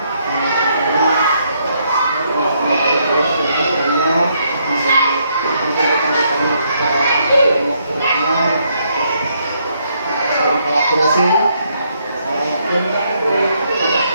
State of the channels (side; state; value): both; inverted; correlation -0.73